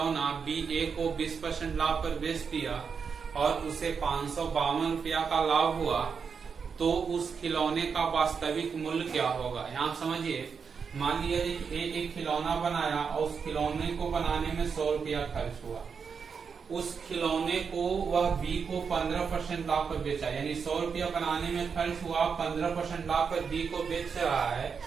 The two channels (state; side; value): quieter; left; 6.0 dB